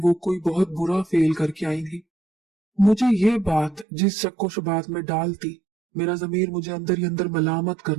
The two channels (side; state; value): left; drops out; at 3.9 s